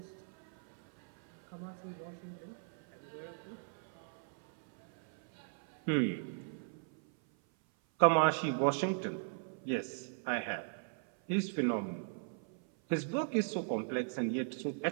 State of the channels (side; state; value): left; silent; 52 dB below the other